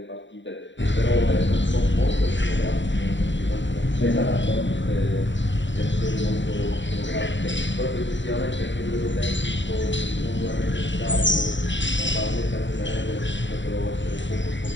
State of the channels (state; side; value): late; right; 0.54 ms